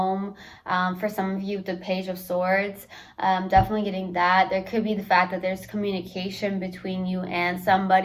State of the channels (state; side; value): identical; both; correlation 1.00